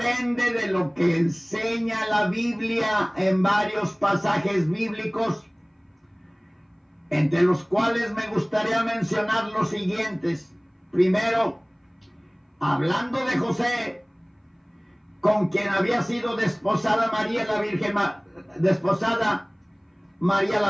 de lo que enseña la Biblia en varios pasajes bíblicos, entre los cuales me gustaría mencionar los siguientes. Primero, hablando de José, con quien había sido desposada María la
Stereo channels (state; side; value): identical; both; correlation 1.00